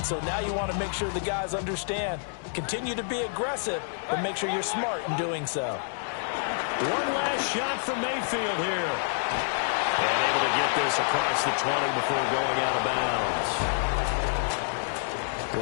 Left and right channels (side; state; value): right; silent; digital silence